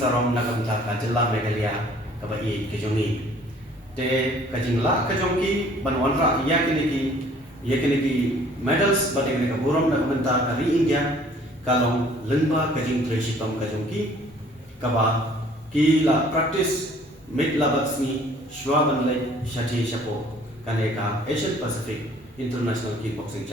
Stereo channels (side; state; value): both; normal; correlation 0.55